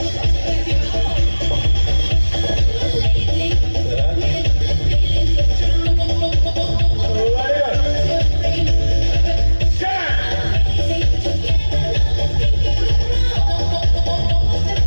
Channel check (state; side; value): inverted; both; correlation -1.00